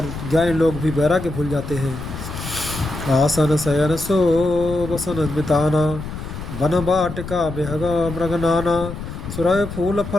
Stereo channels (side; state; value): left; noise; rumble, 9 dB below the sound